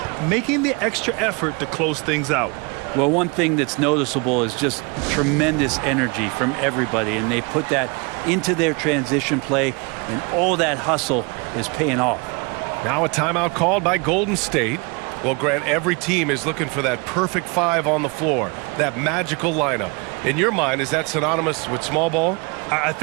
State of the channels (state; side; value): quieter; left; 30.0 dB